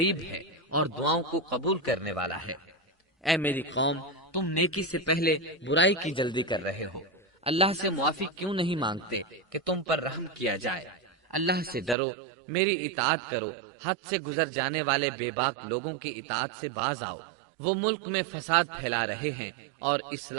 ہے اور دعاؤں کو قبول کرنے والا ہے۔ اے میری قوم، تم نیکی سے پہلے برائی کی جلدی کر رہے ہو، اللہ سے معافی کیوں نہیں مانگتے کہ تم پر رحم کیا جائے؟ اللہ سے ڈرو، میری اطاعت کرو، حد سے گزر جانے والے بے باک لوگوں کی اطاعت سے باز آؤ، وہ ملک میں فساد پھیلا رہے ہیں اور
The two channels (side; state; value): left; drops out; at 12.0 s